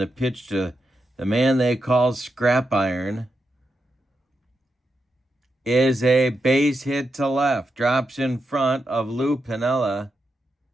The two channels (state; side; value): normal; both; correlation 0.86